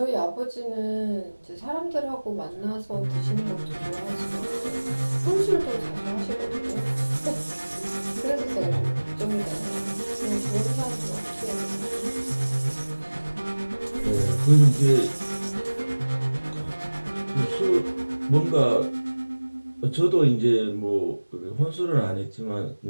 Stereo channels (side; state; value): both; inverted; correlation -1.00